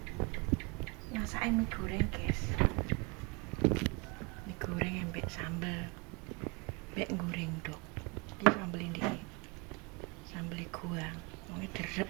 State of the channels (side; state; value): left; quieter; 30.0 dB